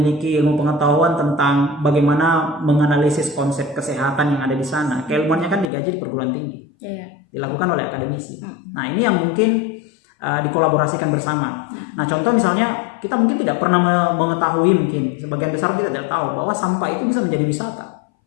ilmu pengetahuan tentang bagaimana menganalisis konsep kesehatan yang ada di sana, keilmuannya kan digaji di perguruan tinggi, dilakukan oleh akademisi. Nah, ini yang mungkin dikolaborasikan bersama. Nah, contoh misalnya kita mungkin tidak pernah mengetahui, mungkin sebagian besar kita tidak tahu bahwa sampah itu bisa menjadi wisata.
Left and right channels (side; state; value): right; drops out; at 5.7 s